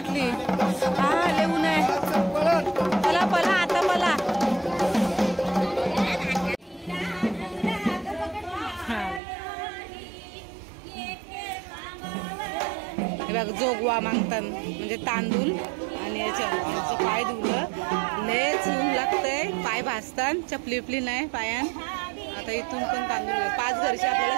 हा लिहून आहे. पला पला आता पला. हे बघ जोगवा मागतात म्हणजे तांदूळ आणि याचं पाय धुवलं. लेच ऊन लागतंय. पाय भाजतात. चपली उपली नाही पायान. आता इथून पण तांदूळ 5 घरचे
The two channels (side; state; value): left; drops out; at 9.2 s